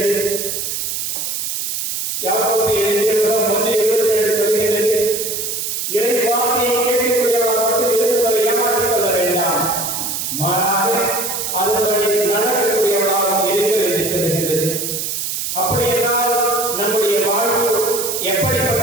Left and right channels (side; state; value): right; noise; hiss, 3 dB below the sound